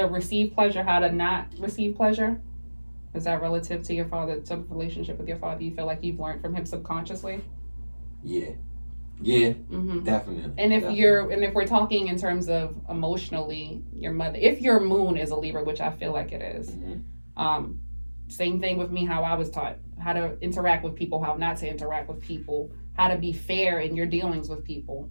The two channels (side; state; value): both; inverted; correlation -1.00